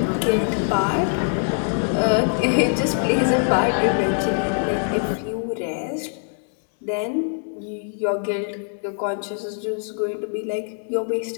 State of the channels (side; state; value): right; silent; 58 dB below the other